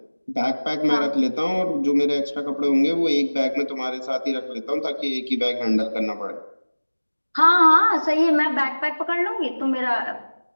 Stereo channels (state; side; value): inverted; both; correlation -1.00